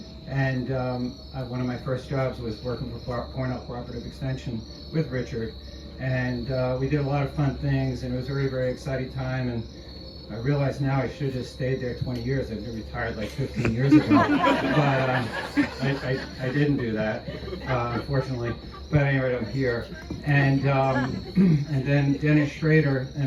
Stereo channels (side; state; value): both; identical; correlation 1.00